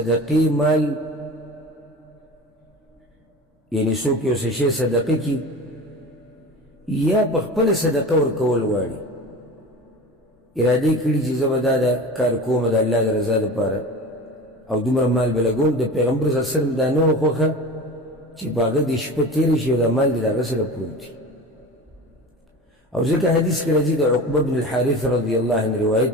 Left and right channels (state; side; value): normal; both; correlation 0.34